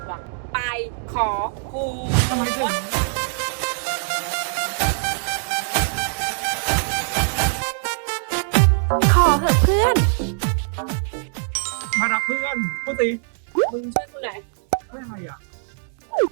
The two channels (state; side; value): silent; left; digital silence